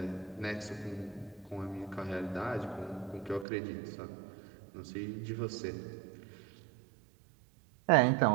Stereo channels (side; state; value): left; drops out; at 3.5 s